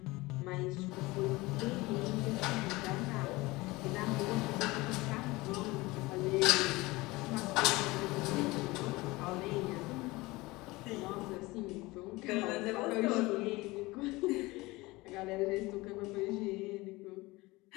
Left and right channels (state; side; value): quieter; right; 21.5 dB